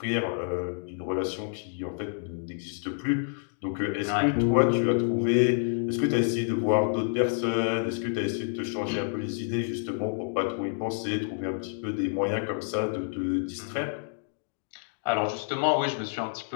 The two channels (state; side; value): silent; right; digital silence